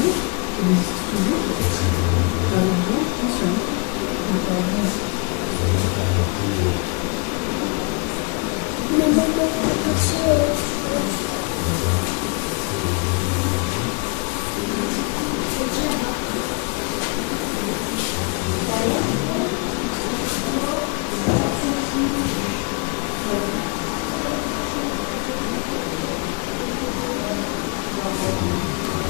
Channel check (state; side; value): quieter; right; 31.1 dB